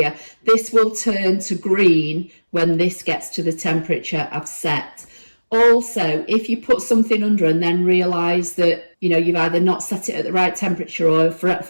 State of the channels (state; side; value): inverted; both; correlation -1.00